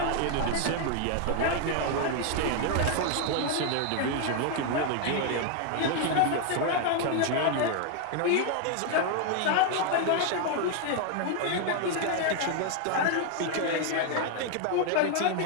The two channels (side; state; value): both; different; correlation 0.00